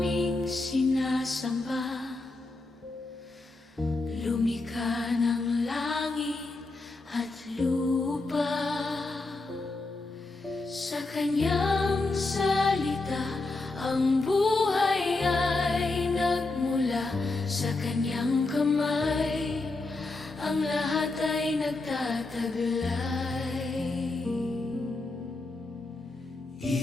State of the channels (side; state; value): right; quieter; 3.3 dB